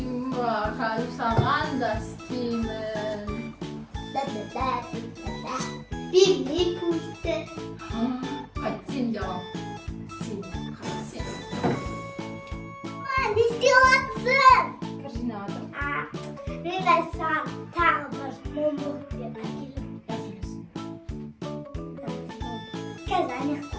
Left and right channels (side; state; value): both; identical; correlation 1.00